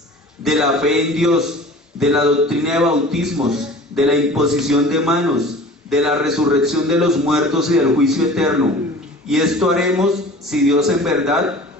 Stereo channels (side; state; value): both; normal; correlation 0.42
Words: de la fe en Dios, de la doctrina de bautismos, de la imposición de manos, de la resurrección de los muertos y del juicio eterno. Y esto haremos si Dios en verdad